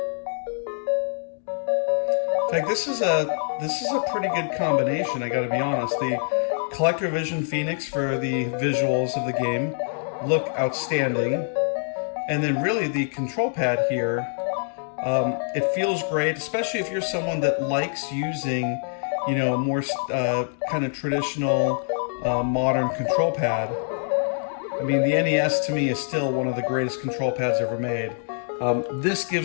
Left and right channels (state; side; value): silent; right; 59 dB below the other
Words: In fact, this is a pretty good combination, I gotta be honest. The CollectorVision Phoenix for the visuals of the game look outstanding, and then really the control pad here, it feels great, especially if you're someone that likes using, you know, a more kind of traditional modern control pad. I mean, the NES to me is still one of the greatest control pads ever made. This